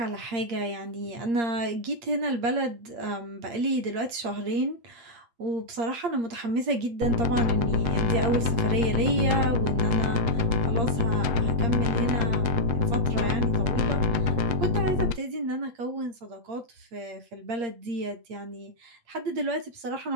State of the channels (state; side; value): late; left; 8.6 ms